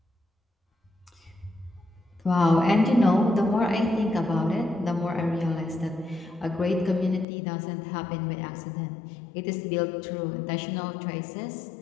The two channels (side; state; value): right; drops out; at 7.2 s